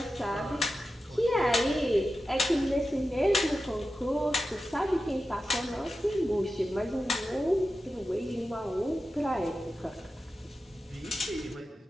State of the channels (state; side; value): normal; both; correlation 0.92